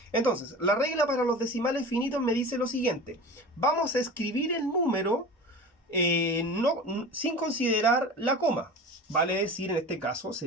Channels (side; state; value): both; normal; correlation 0.34